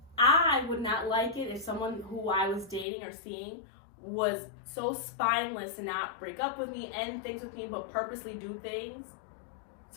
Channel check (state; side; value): drops out; right; at 2.9 s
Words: I would not like it if someone who I was dating or seeing was so spineless to not break up with me, end things with me, but purposely do things